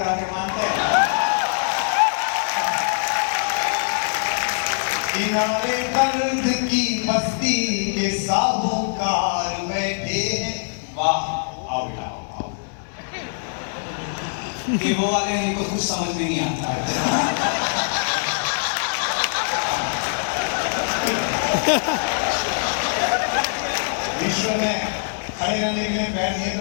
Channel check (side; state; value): right; silent; digital silence